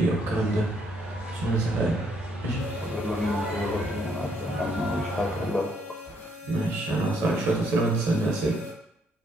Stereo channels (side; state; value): both; normal; correlation 0.70